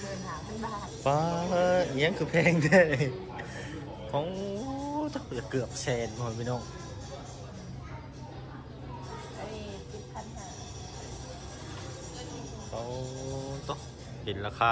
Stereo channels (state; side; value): identical; both; correlation 1.00